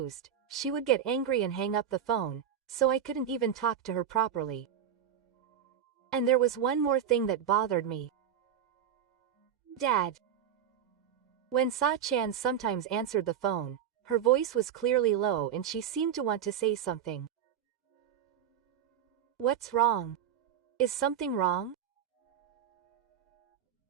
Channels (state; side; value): quieter; left; 9.0 dB